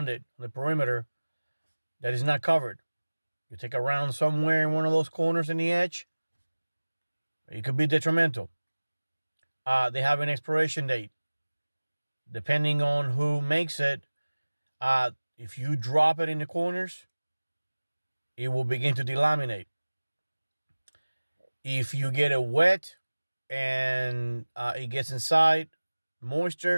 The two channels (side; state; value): both; inverted; correlation -1.00